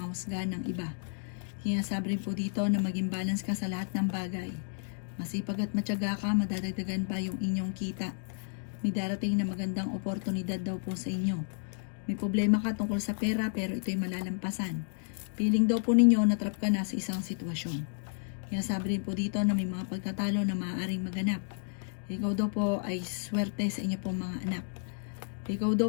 ng iba. Sinasabi rin po dito na maging balance ka sa lahat ng bagay. Masipag at matyaga ka, madadagdagan pa yung inyong kita. May darating na magandang oportunidad daw po sa inyo. May problema ka tungkol sa pera pero ito'y malalampasan. Feeling daw po ninyo na-trap ka na sa isang sitwasyon. Kaya sabi rin po dito na may mga pagtatalo na maaaring maganap. Ikaw daw po ay swerte sa inyo pong mga anak. Ikaw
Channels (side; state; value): right; silent; digital silence